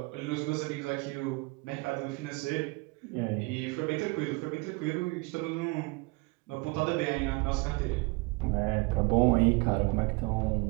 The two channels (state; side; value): quieter; left; 26.7 dB